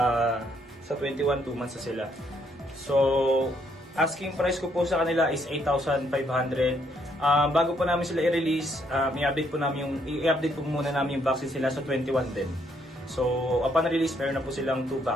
21, 2 months na sila. So, asking price ko po sa kanila is 8,500. Bago po namin sila i-release, i-update po muna namin yung vaccine sila sa 21 din. So, upon release, meron na po silang 2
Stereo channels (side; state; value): both; normal; correlation 0.71